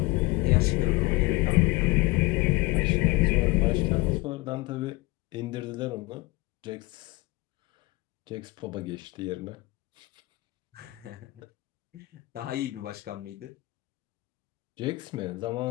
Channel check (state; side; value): quieter; right; 22.0 dB